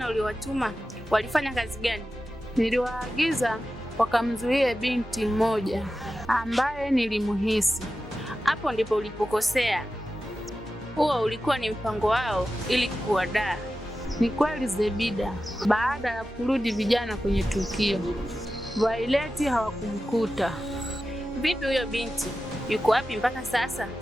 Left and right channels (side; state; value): both; normal; correlation 0.93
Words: uliowatuma walifanya kazi gani? Niliwaagiza wakamzuie binti mmoja ambaye nilimuhisi. Hapo ndipo ulipokosea. Huo ulikuwa ni mpango wao ili kuwadaa. Ni kweli Zebida, baada ya kurudi vijana kwenye tukio, Violet hawakumkuta. Vipi huyo binti? Yuko wapi mpaka sasa?